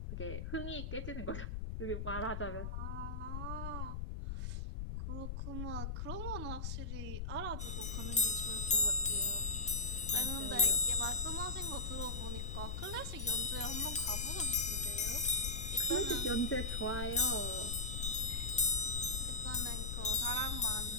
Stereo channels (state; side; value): noise; left; rumble, 4 dB below the sound